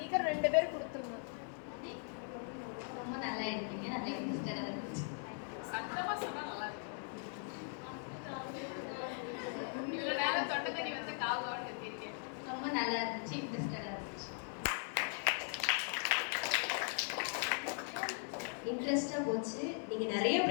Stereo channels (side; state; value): right; silent; 51 dB below the other